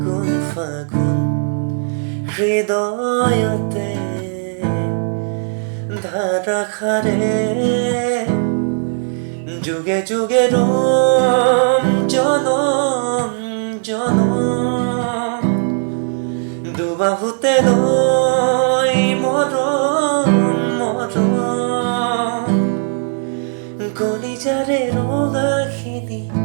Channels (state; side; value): silent; left; 63 dB below the other